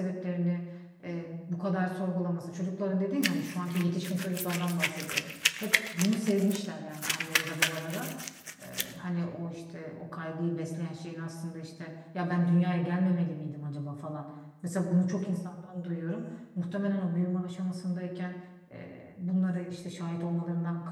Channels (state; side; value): identical; both; correlation 1.00